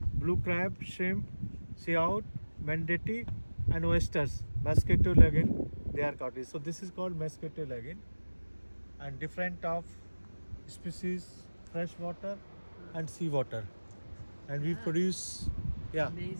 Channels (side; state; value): both; inverted; correlation -1.00